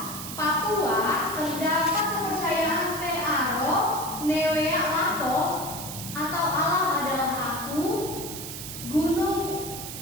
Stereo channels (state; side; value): noise; right; hiss, 8 dB below the sound